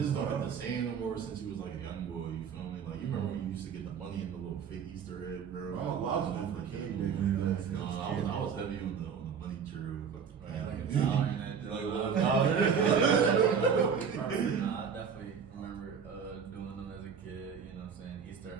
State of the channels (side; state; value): left; quieter; 6.7 dB